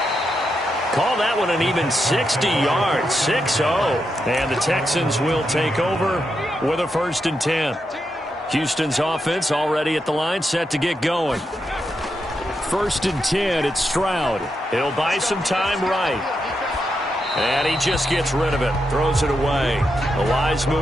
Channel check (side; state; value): both; normal; correlation 0.84